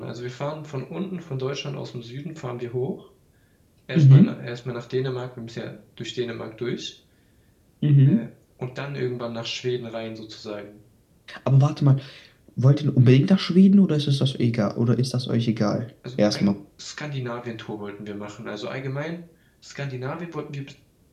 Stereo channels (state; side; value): identical; both; correlation 1.00